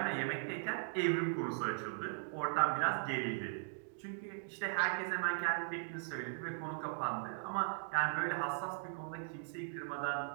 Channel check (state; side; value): silent; left; digital silence